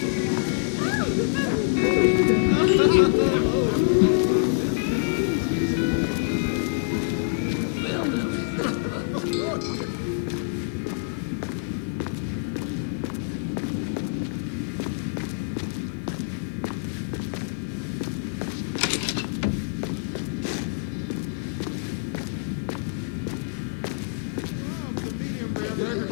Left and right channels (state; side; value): silent; right; digital silence